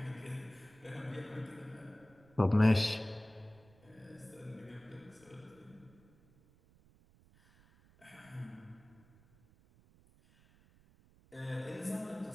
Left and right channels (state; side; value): noise; right; rumble, 27 dB below the sound